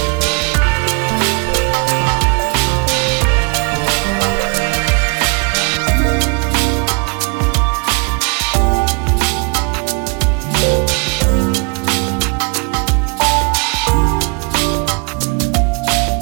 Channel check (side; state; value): left; quieter; 34.4 dB